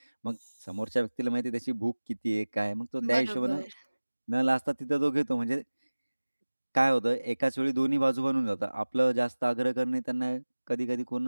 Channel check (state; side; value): inverted; both; correlation -1.00